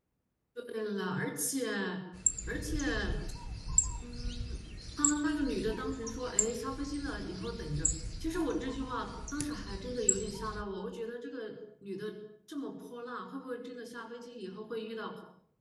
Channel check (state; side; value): identical; both; correlation 1.00